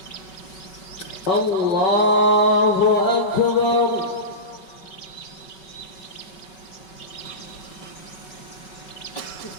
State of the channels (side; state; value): right; late; 5.3 ms